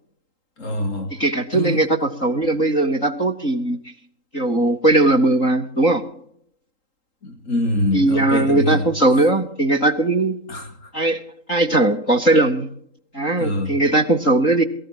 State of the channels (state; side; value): late; right; 3.8 ms